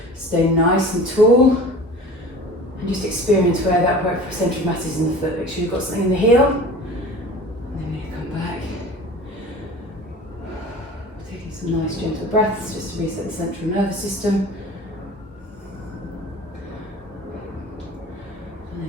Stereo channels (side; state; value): both; normal; correlation 0.40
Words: Stay nice and tall. And just experience where that centre of mass is in the foot. Make sure you've got something in the heel. And then we're going to come back. Taking some nice gentle breaths just to reset the central nervous system. And